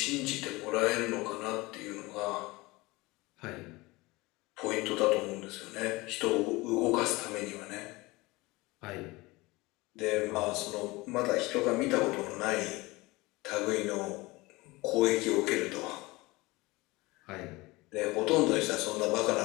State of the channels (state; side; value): quieter; right; 22.1 dB